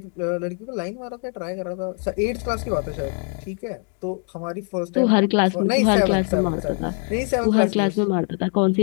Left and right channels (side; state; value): right; quieter; 38.3 dB